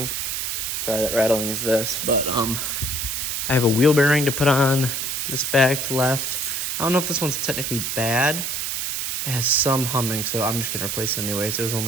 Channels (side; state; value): right; noise; hiss, 2 dB below the sound